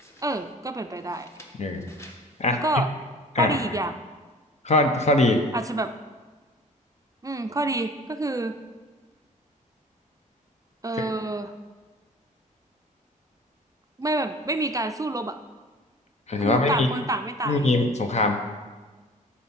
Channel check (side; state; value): both; normal; correlation 0.46